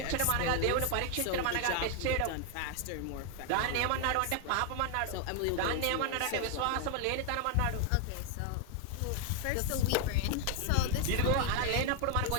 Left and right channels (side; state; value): both; different; correlation 0.00